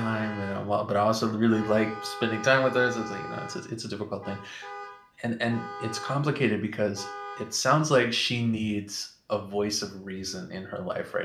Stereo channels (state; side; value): identical; both; correlation 1.00